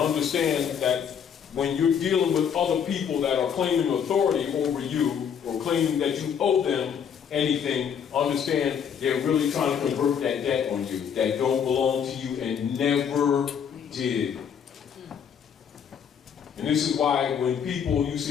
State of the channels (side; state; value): right; quieter; 7.7 dB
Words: that when you're dealing with other people that are claiming authority over you or claiming that you owe them anything, understand they're really trying to convert that debt on you that don't belong to you and never did. And this is why when you